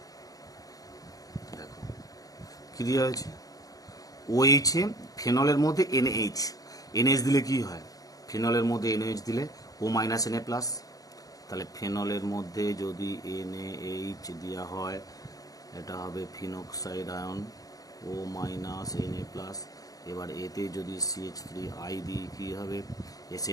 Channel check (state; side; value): late; right; 0.17 ms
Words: দেখো কি দেওয়া হয়েছে, OH এ ফেনলের মধ্যে NH, NH দিলে কি হয়, ফেনলের মধ্যে NH দিলে O মাইনাস Na প্লাস, তাহলে ফেনলের মধ্যে যদি NaH দেওয়া হয় এটা হবে phenoxide ion O minus Na plus. এবার এতে যদি CH3I দিই কী হবে,